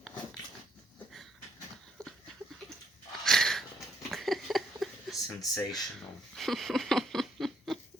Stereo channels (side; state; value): both; normal; correlation 0.71